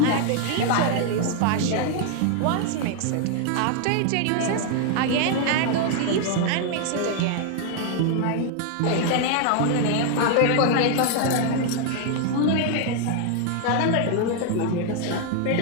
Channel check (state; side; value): different; both; correlation 0.00